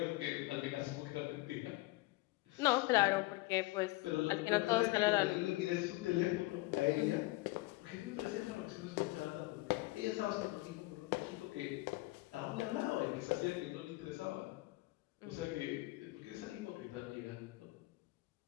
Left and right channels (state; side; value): quieter; right; 21.2 dB